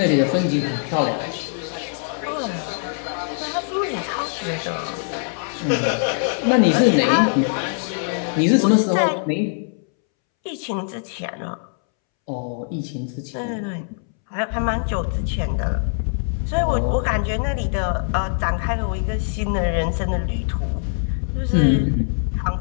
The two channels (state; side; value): silent; right; 64 dB below the other